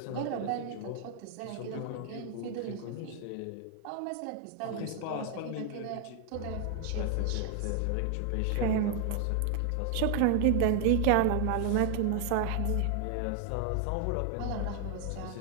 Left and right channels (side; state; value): both; different; correlation 0.00